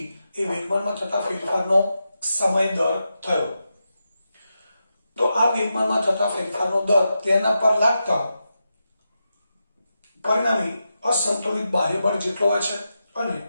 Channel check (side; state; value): both; inverted; correlation -0.88